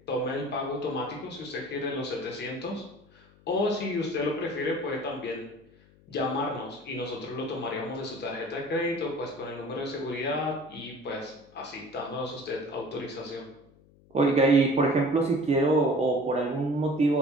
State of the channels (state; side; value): noise; left; hum, 27 dB below the sound